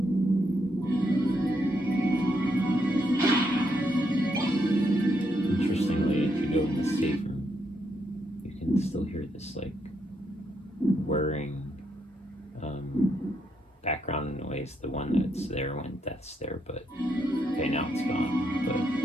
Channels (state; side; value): normal; both; correlation 0.78